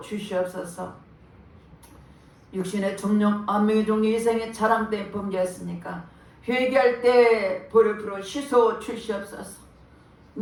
육신의 정령 안명의 종류 이생의 자랑 때 범죄했으니까 회개할 때 보혈로 씻어 주시옵소서.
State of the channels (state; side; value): identical; both; correlation 1.00